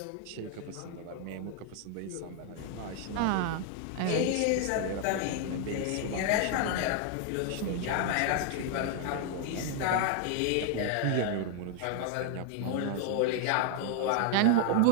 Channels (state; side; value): different; both; correlation 0.00